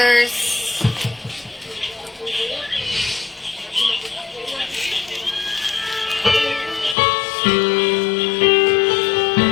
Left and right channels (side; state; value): right; drops out; at 7.0 s